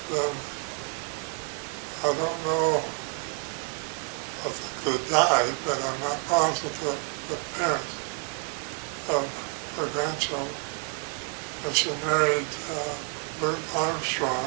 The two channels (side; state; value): left; quieter; 33.5 dB